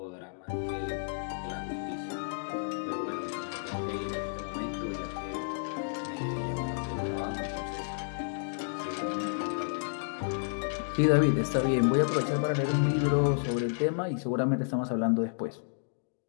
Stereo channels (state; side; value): silent; right; digital silence